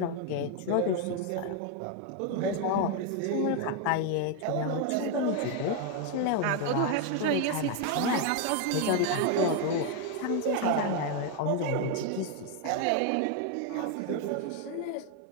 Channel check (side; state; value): both; different; correlation 0.01